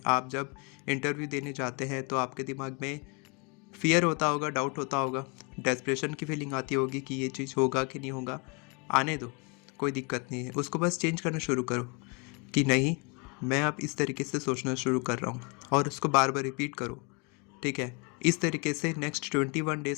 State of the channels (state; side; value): quieter; right; 31.4 dB